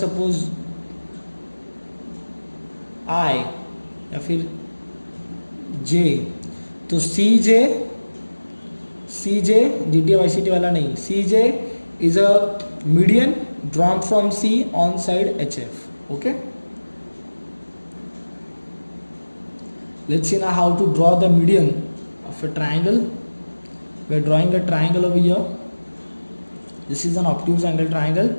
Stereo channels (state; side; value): inverted; both; correlation -1.00